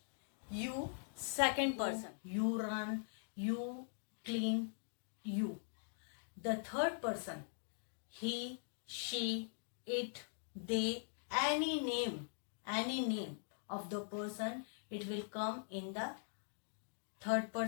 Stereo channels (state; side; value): silent; right; digital silence